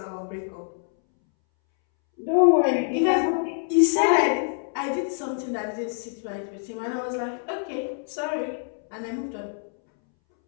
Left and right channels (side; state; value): right; silent; 61 dB below the other